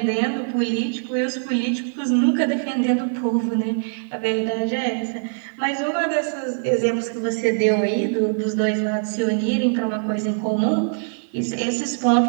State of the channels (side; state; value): left; silent; digital silence